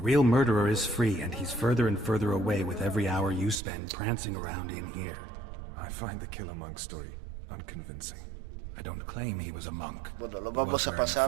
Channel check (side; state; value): left; drops out; at 3.6 s